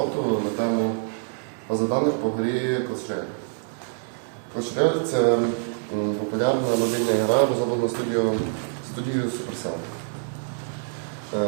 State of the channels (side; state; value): left; silent; 61 dB below the other